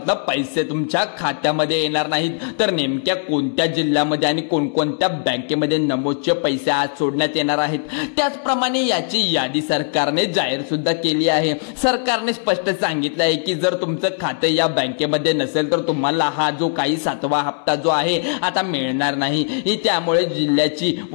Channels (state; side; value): silent; right; 62 dB below the other